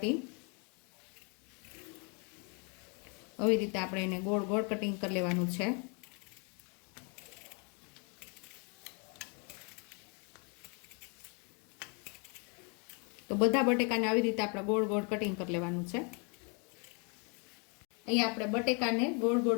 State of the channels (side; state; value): right; quieter; 35.0 dB